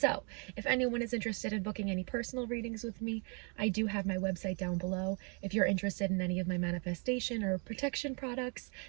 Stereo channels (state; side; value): quieter; left; 35.6 dB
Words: if anyone is interested in booking any personal readings with me, I do have my website down below. If you're interested in any of my manifestation or protection products,